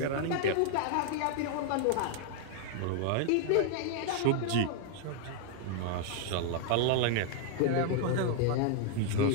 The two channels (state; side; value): different; both; correlation 0.00